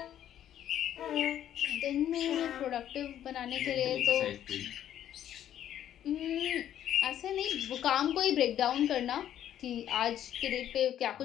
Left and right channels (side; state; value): right; quieter; 10.9 dB